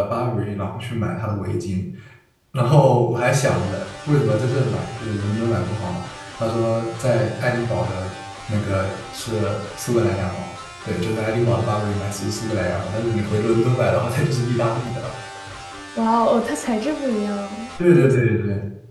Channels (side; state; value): both; identical; correlation 1.00